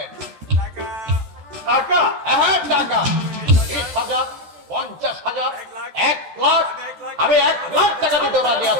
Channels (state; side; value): late; left; 14 ms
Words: টাকা? হ্যাঁ টাকা 20,000, 50,000, 1 লাখ। আমি 1 লাখ টাকা দিতে রাজি